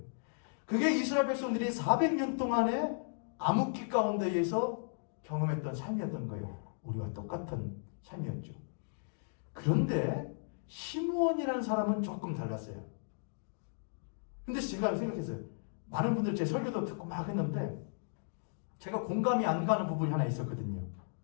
그게 이스라엘 백성들이 400년 동안의 암흑기 가운데에서 경험했던 삶이었던 거예요. 우리와 똑같은 삶이었죠. 그런데 시므온이라는 사람은 조금 달랐어요. 근데 제가 생각했어요. 많은 분들 제 설교도 듣고 막 했는데 제가 공감이 안 가는 부분이 하나 있었거든요.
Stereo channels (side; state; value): right; silent; digital silence